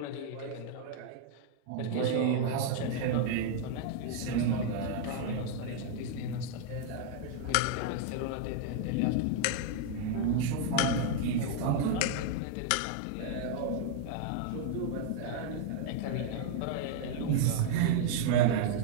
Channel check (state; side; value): different; both; correlation 0.00